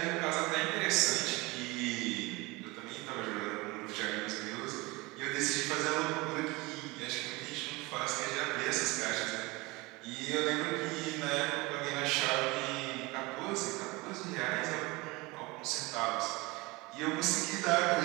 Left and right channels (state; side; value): quieter; left; 23.7 dB